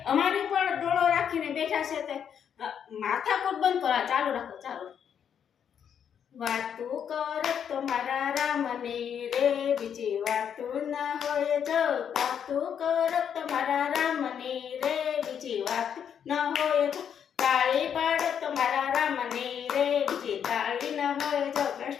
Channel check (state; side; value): quieter; right; 8.2 dB